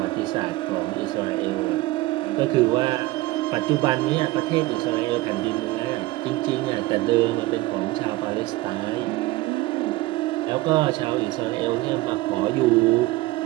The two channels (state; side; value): quieter; left; 19.1 dB